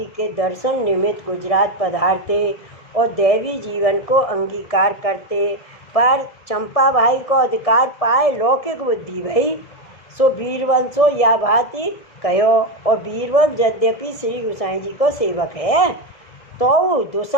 के दर्शन निमित्त गुजरात पधारते और दैवी जीवन को अंगीकार करते, पर चंपा भाई को अधिकार पाए लौकिक बुद्धि भई, सो बीरबल सो या भांति कहो। और बीरबल यद्यपि श्री गोसाई जी को सेवक है, तो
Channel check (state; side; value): late; right; 1.7 ms